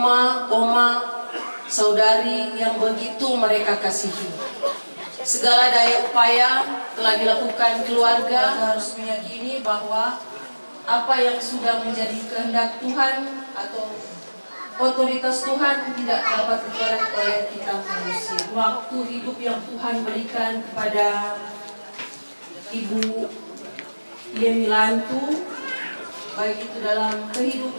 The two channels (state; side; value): inverted; both; correlation -1.00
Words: oma, saudari yang begitu mereka kasihi. Segala daya upaya telah dilakukan keluarga harus meyakini bahwa apa yang sudah menjadi kehendak Tuhan atau otoritas Tuhan tidak dapat digerak oleh kita manusia. Waktu hidup yang Tuhan berikan kepada Ibu Yemi Lantu, baik itu dalam